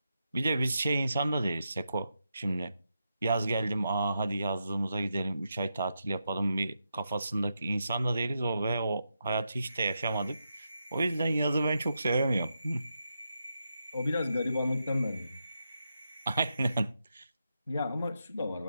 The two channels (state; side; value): inverted; both; correlation -0.85